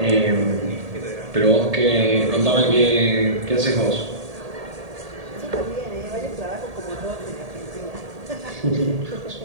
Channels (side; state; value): left; late; 1.8 ms